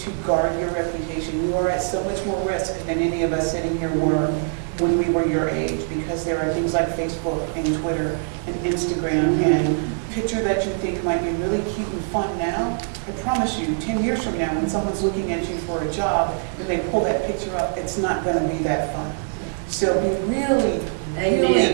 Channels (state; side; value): silent; left; 63 dB below the other